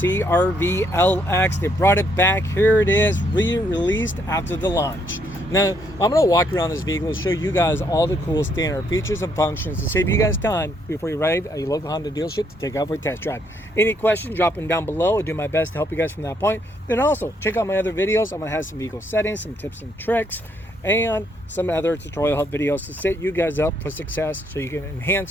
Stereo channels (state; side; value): normal; both; correlation 0.72